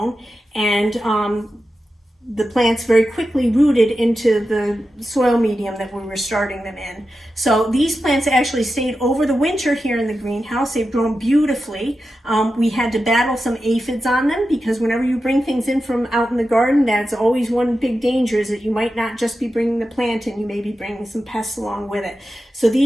and the plants very quickly rooted into the soil medium that we were starting them in. So these plants actually stayed over the winter here in the greenhouse. They've grown beautifully. We had to battle some aphids on them because whenever you bring things in from out in the garden, that's always one big danger, is that you might not just be bringing the plant in, you may be bringing some pests along with it. So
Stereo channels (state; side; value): normal; both; correlation 0.91